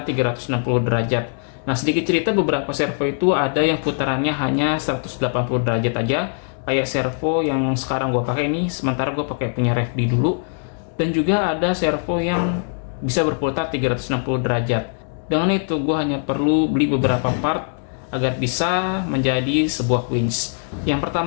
360 derajat. Nah, sedikit cerita, beberapa servo itu ada yang putarannya hanya 180 derajat aja, kayak servo yang sekarang gue pakai ini, sementara gue pakai punya Revdi dulu. Dan juga ada servo yang bisa berputar 360 derajat. Dengan itu gue hanya perlu beli beberapa part agar bisa menjadi sebuah winch. Yang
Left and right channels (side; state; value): right; silent; 65 dB below the other